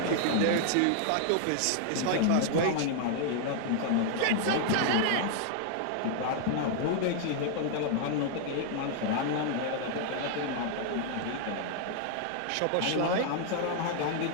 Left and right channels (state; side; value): different; both; correlation 0.00